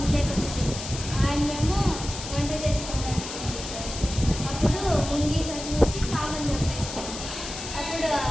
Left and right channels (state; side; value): noise; left; hiss, 9 dB below the sound